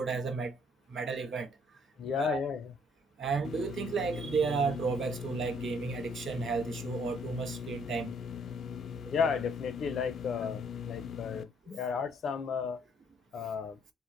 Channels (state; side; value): normal; both; correlation 0.64